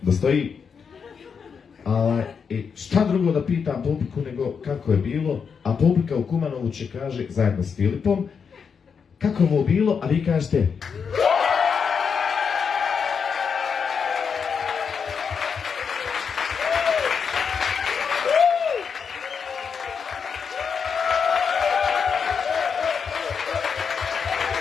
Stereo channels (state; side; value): quieter; right; 6.3 dB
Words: da stoji. I šta drugo da pitam publiku nego kako je bilo, a publika u Kumanovu će kaže, zajedno s Filipom, kako mu bilo, a vi kažete...